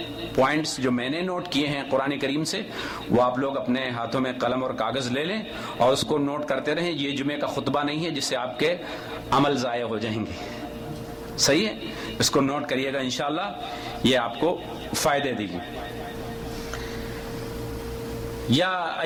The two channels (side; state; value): both; identical; correlation 1.00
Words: پوائنٹس جو میں نے نوٹ کیے ہیں قرآن کریم سے، وہ آپ لوگ اپنے ہاتھوں میں قلم اور کاغذ لے لیں اور اس کو نوٹ کرتے رہیں۔ یہ جمعے کا خطبہ نہیں ہے جس سے آپ کے عمل ضائع ہو جائیں گے، صحیح ہے؟ اس کو نوٹ کریے گا، انشاءاللہ یہ آپ کو فائدے دے گی۔ یا